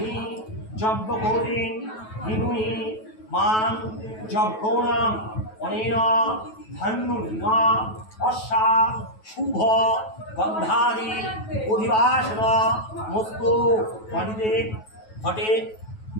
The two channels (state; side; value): late; right; 9.2 ms